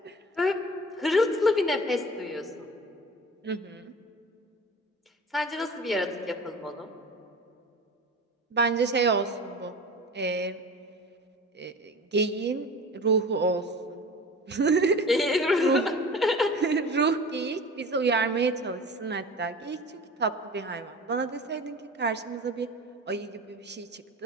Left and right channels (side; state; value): both; normal; correlation 0.38